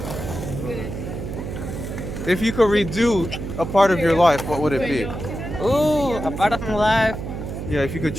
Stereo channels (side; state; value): right; noise; hum, 6 dB below the sound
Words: If you could redo a part of your life, what would it be? Ooh, a part of my life. Yeah, if you could